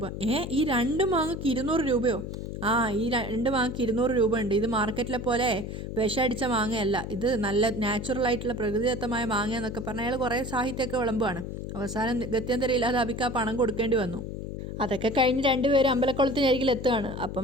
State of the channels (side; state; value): left; noise; hum, 7 dB below the sound